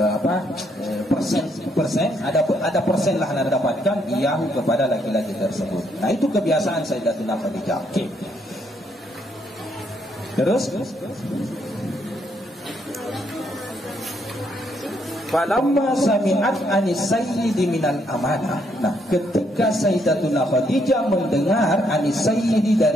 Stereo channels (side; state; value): both; normal; correlation 0.73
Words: persen, ada persen lah yang dapatkan iyahu kepada laki-laki tersebut. Nah itu kebiasaan Sayyidatuna Khadijah. Oke. Terus falamma sami'at anis sayyidi minal amanah. Nah, ketika Sayyidatuna Khadijah mendengar anis sayyidi,